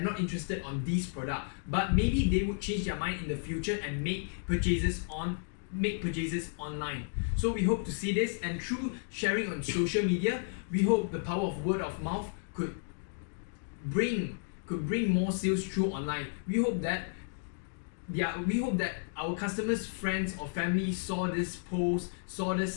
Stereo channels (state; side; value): silent; right; digital silence